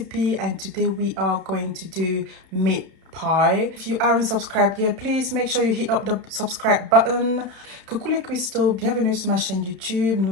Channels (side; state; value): left; late; 31 ms